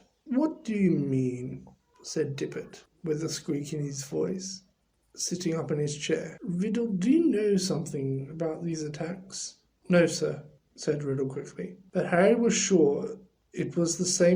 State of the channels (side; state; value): both; identical; correlation 1.00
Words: what do you mean? Said Tippet, with a squeak in his voice, sitting up in his chair. Riddle, do you know something about these attacks? No, sir, said Riddle quickly. But Harry was sure it was the